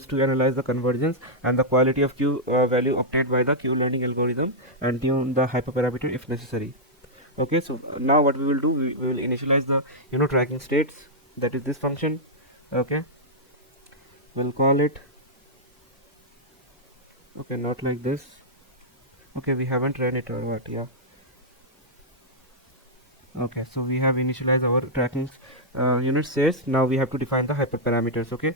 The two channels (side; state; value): both; normal; correlation -0.07